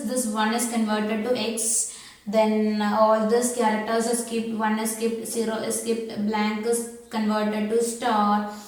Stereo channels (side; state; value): both; identical; correlation 1.00